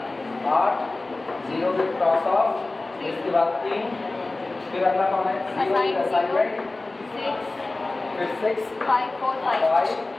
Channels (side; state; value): right; quieter; 3.1 dB